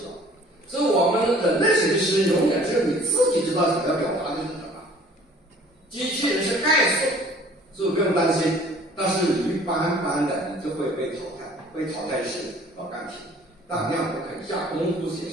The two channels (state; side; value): normal; both; correlation 0.52